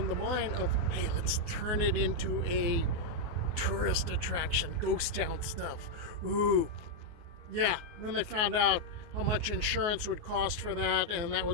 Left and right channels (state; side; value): late; left; 24 ms